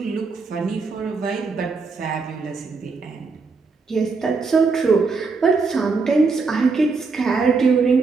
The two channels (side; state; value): left; quieter; 4.4 dB